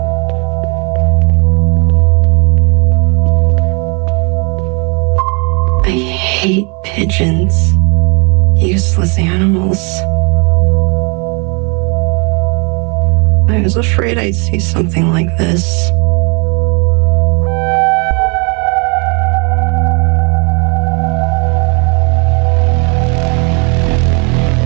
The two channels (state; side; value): quieter; left; 33.6 dB